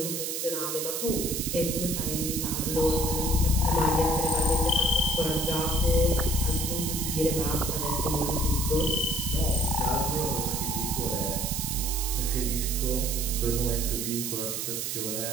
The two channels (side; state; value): right; noise; hiss, 3 dB below the sound